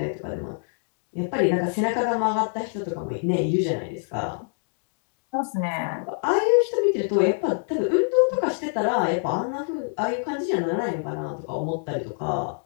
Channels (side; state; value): right; silent; 61 dB below the other